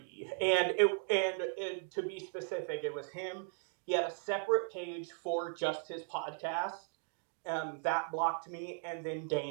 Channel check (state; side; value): silent; left; 53 dB below the other